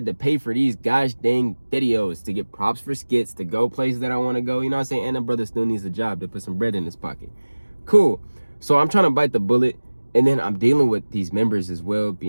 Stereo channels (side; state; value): both; inverted; correlation -1.00